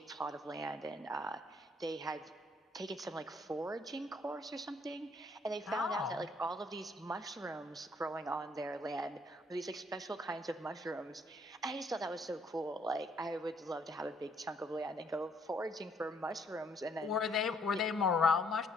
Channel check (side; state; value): both; normal; correlation 0.67